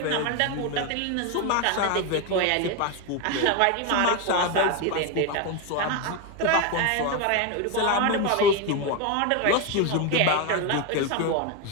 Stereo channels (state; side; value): different; both; correlation 0.02